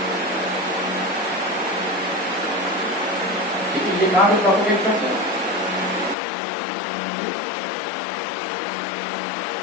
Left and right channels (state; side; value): drops out; right; at 6.2 s